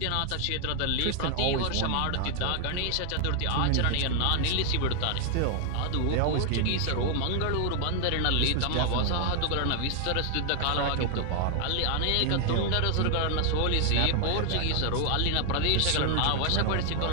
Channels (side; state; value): both; different; correlation 0.00